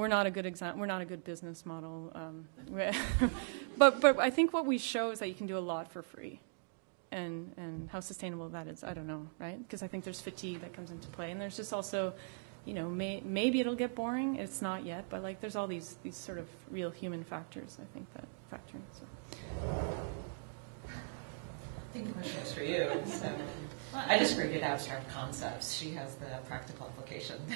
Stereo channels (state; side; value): silent; left; digital silence